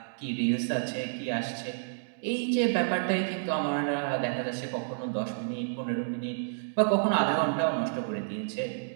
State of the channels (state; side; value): silent; left; digital silence